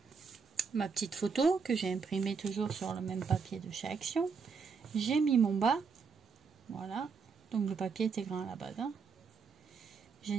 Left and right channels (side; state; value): left; quieter; 5.5 dB